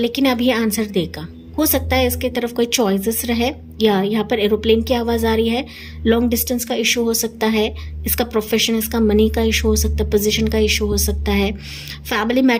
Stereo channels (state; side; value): identical; both; correlation 1.00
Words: अब ये आंसर देगा। हो सकता है इसके तरफ कोई चॉइसेस रहे, या यहाँ पर एरोप्लेन की आवाज़ आ रही है, लॉन्ग डिस्टेंस का इशू हो सकता है, इसका प्रोफेशन, इसका मनी का इशू हो सकता है, पोजीशन का इशू हो सकता है, फैमिली